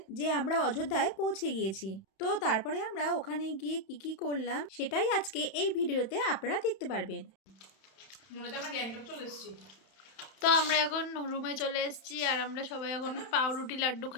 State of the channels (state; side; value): late; right; 31 ms